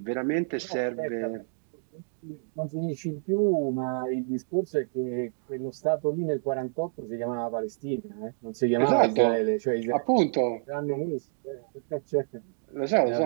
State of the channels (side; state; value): left; silent; digital silence